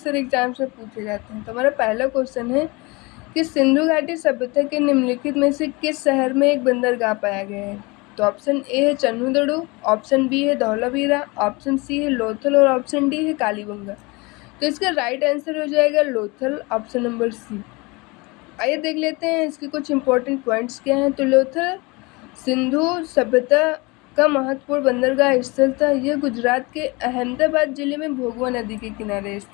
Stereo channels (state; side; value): quieter; right; 25.8 dB